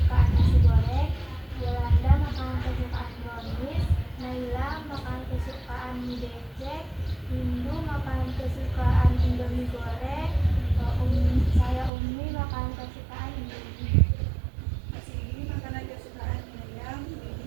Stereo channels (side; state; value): left; drops out; at 11.9 s